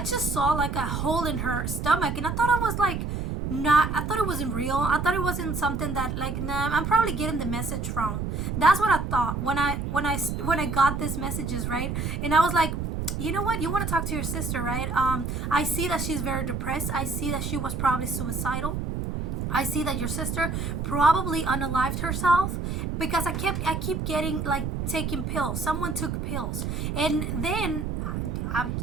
saw like a hole in her stomach and I thought it was like, I thought it wasn't real. I thought it wasn't something that like, nah, I'm probably getting the message wrong. That's what I thought when I got these messages, right? And I was like, you know what? You want to talk to your sister, right? I see that she's very depressed. I see that she was probably suicidal. I see that your sister probably unalived herself because I keep getting like taking pills. Someone took pills, and then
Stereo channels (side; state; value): right; noise; rumble, 2 dB below the sound